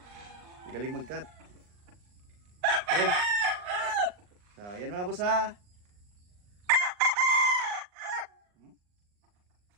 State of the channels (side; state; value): left; late; 39 ms